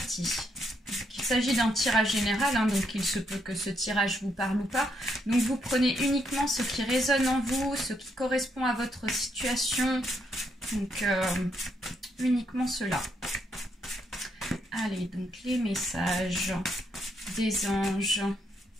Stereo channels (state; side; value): normal; both; correlation 0.76